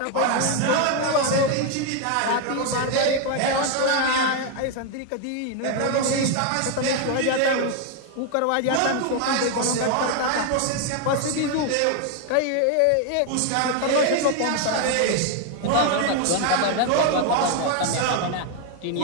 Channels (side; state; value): both; different; correlation 0.01